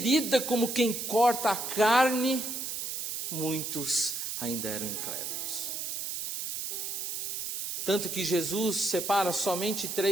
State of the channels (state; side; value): noise; right; hiss, 4 dB below the sound